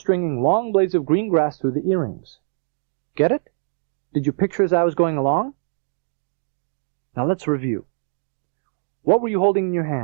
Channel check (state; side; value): silent; left; digital silence